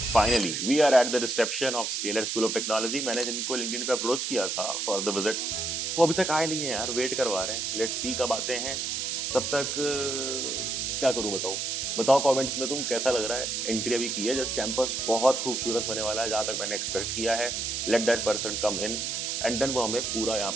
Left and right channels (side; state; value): right; noise; hiss, 2 dB below the sound